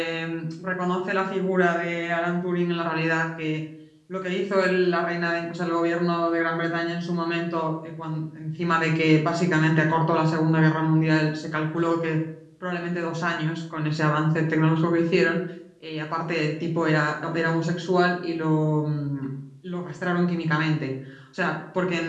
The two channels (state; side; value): identical; both; correlation 1.00